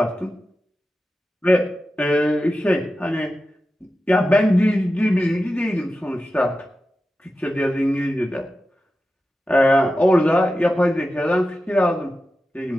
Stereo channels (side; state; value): both; normal; correlation 0.92